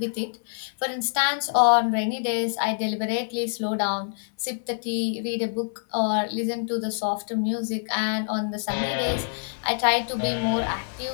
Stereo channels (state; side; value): silent; right; 57 dB below the other